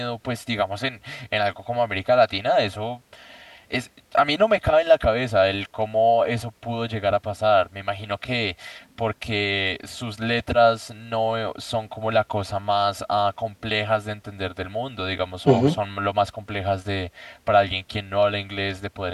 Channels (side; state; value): both; identical; correlation 1.00